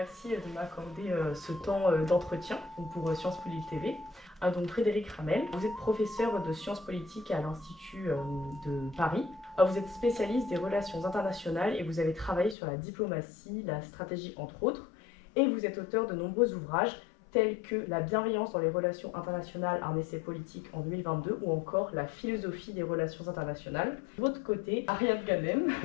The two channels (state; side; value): drops out; right; at 12.6 s